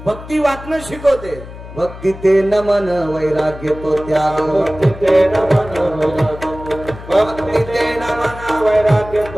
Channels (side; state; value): left; noise; hum, 14 dB below the sound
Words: भक्ती वाटणं शिकवते. भक्ती ते नमन वैराग्य तो त्याग, भक्ती ते नमन भक्ती ते नमन वैराग्य